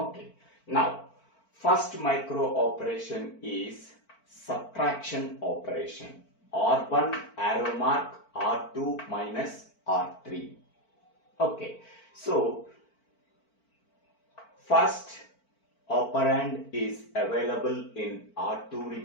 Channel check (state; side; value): late; right; 4.5 ms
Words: Now, first micro operation is subtraction operation. R1 arrow mark R2 minus R3. Okay. So first operand is available in R2